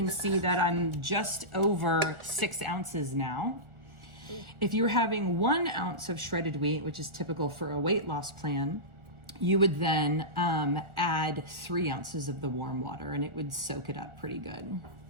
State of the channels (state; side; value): late; left; 1.4 ms